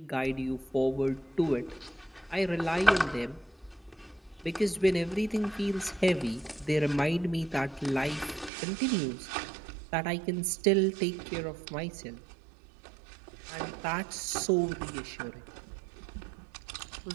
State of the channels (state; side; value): drops out; left; at 8.5 s